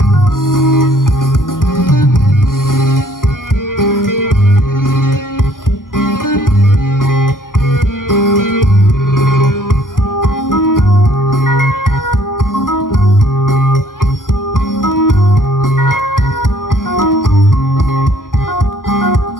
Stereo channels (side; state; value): right; late; 0.90 ms